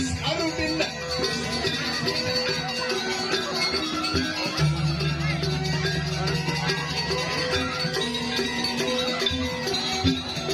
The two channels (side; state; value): both; identical; correlation 1.00